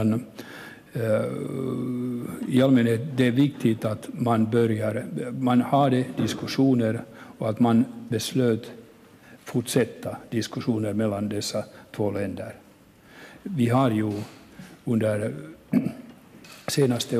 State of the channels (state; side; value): identical; both; correlation 1.00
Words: i allmänhet det är viktigt att man hade diskussioner och att man beslöt fortsätta diskussioner mellan dessa två länder. Vi har ju under senaste